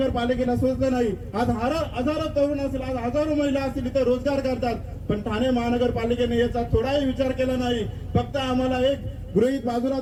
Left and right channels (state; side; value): identical; both; correlation 1.00